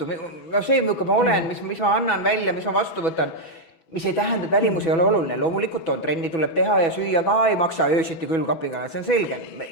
see, milline ma olen, mis ma annan välja, mis ma vastu võtan, mis ei tähenda, et välimus ei ole oluline. Loomulikult on, trenni tuleb teha ja süüa ka ei maksa öösiti külmkapiga, see on selge.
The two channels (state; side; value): late; right; 6.1 ms